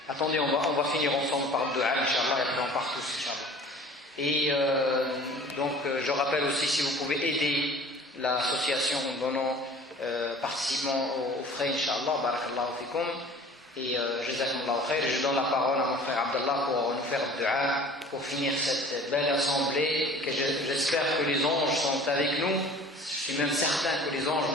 attendez, on va finir ensemble par le dua, Inch'Allah, et après on part tous, Inch'Allah. Et donc, je rappelle aussi, si vous pouvez aider l'association en donnant, participant aux frais, Inch'Allah, barakallahu fikum. Et jazakumullahu khair, je donne la parole à mon frère Abdallah pour nous faire le dua, pour finir cette belle assemblée, que j'espère que les anges sont avec nous. Je suis même certain que les anges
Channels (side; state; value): both; normal; correlation 0.46